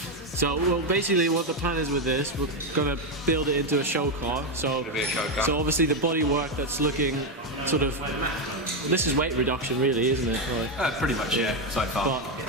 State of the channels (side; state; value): both; normal; correlation 0.07